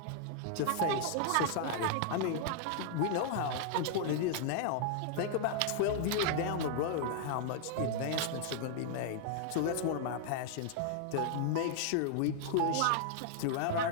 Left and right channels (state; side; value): different; both; correlation -0.01